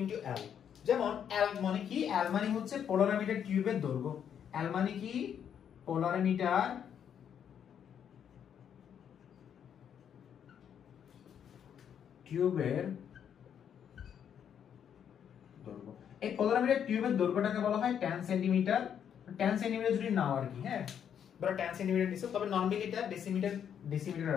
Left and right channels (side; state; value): right; quieter; 8.6 dB